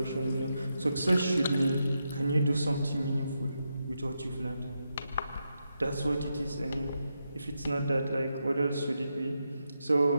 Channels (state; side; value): inverted; both; correlation -0.85